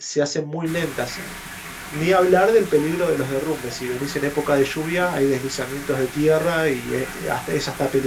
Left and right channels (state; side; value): identical; both; correlation 1.00